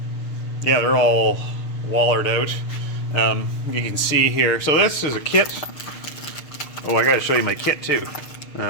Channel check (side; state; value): right; late; 6.5 ms